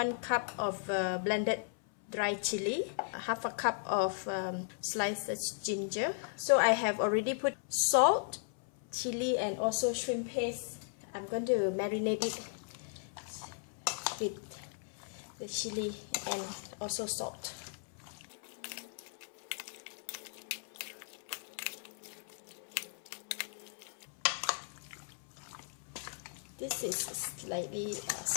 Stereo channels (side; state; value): right; silent; 53 dB below the other